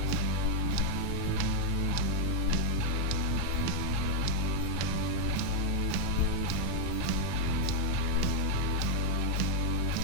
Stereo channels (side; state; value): both; different; correlation 0.00